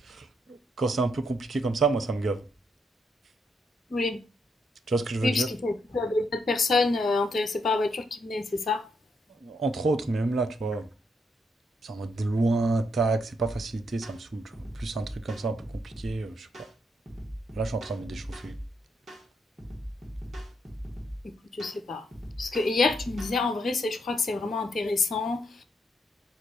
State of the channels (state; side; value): normal; both; correlation 0.77